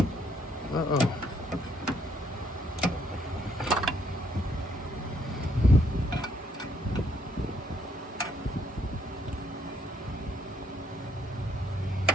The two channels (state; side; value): normal; both; correlation 0.69